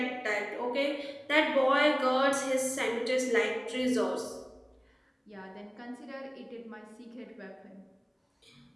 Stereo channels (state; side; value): identical; both; correlation 1.00